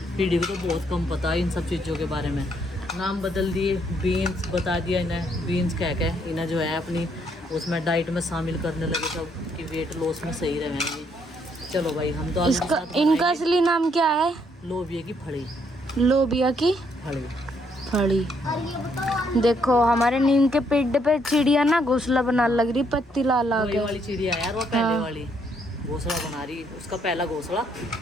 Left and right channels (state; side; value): normal; both; correlation 0.71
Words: पीढ़ी को तो बहुत कम पता है इन सब चीज़ों के बारे में। नाम बदल दिए, बीन्स बता दिया इन्हें, बीन्स कह के इन्हें जो है अपनी उसमें डाइट में शामिल करने लगे सब कि वेट लॉस में सही रहेंगे। चलो भाई हम तो इसका इनका असली नाम क्या है? लोबिया की फली। लोबिया की फली। फली। देखो हमारे नीम के पेड़ पे चिड़िया ना घोंसला बना लग रही, पत्ती ला ला के। वाली चिड़िया यार, वो पहले वाली घोंसला बना रही, उसका पहला घोंसला